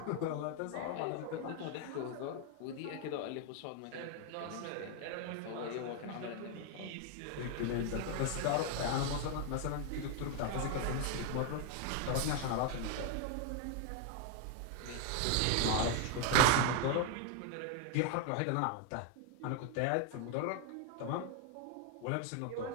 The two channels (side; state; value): both; different; correlation 0.00